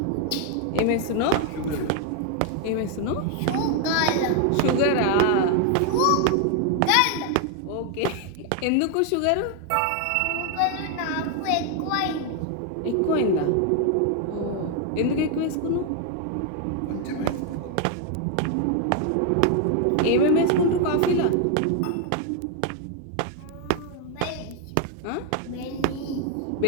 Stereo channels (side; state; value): both; different; correlation 0.01